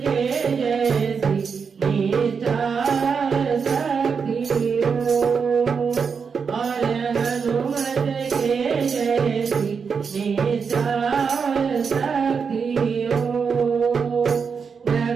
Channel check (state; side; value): quieter; left; 5.9 dB